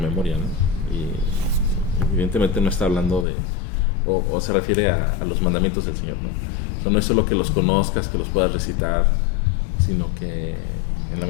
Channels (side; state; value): right; drops out; at 3.2 s